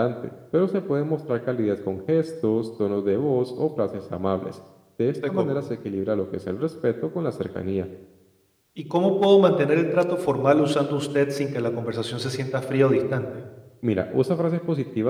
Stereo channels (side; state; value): both; identical; correlation 1.00